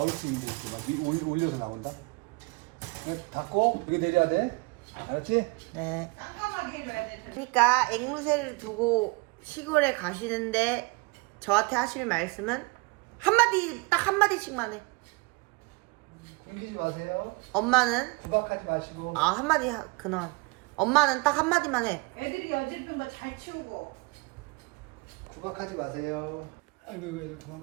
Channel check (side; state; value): left; quieter; 27.6 dB